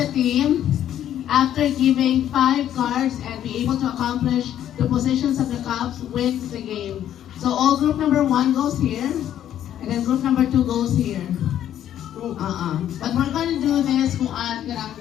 team, after giving 5 cards and be able to accomplish the positions of the cups, wins the game. So all group number 1 goes here, and then group number 2 goes here. But we're going to do this kung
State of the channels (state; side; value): quieter; right; 11.0 dB